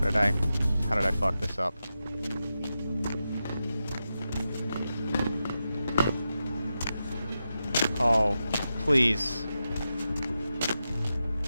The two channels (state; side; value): inverted; both; correlation -0.90